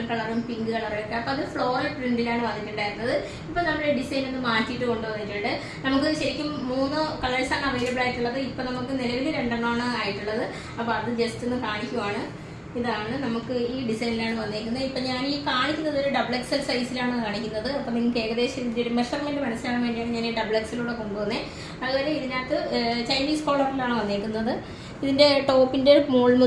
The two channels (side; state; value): both; identical; correlation 1.00